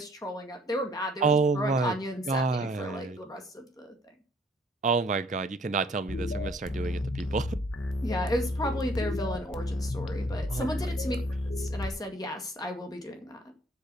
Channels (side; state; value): both; normal; correlation 0.61